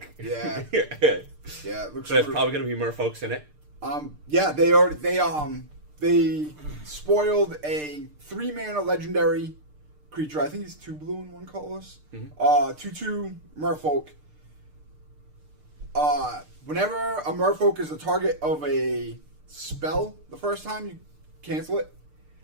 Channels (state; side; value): late; left; 6.7 ms